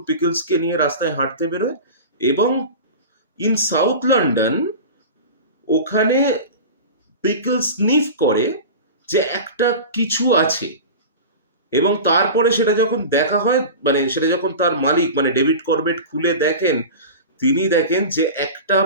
পিকলসকে নিয়ে রাস্তায় হাঁটতে বেরোয়, এবং ইন সাউথ লন্ডন ওখানে পিকলস স্নিফ করে যে একটা কিছু আছে, এবং তারপরে সেটা যখন দেখা হয়, মানে সেটা যখন তার মালিক মানে ডেভিড করবেট খুলে দেখেন, তিনি দেখেন যে একটা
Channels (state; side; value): inverted; both; correlation -0.31